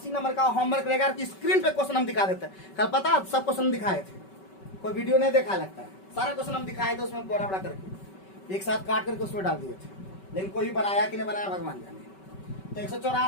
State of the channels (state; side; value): late; right; 5.2 ms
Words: नंबर का होमवर्क रहेगा कि स्क्रीन पे क्वेश्चन हम दिखा देते हैं। कल पता सब क्वेश्चन दिखाए थे, कोई वीडियो नहीं देखा लगता है, सारा क्वेश्चन हम दिखाए थे उसमें बड़ा बड़ा करके एक साथ काट करके उसमें डाल दिए थे, लेकिन कोई बनाया कि नहीं बनाया भगवान जाने। तो